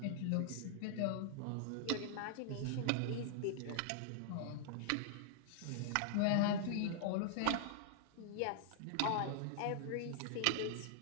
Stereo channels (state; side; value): different; both; correlation -0.01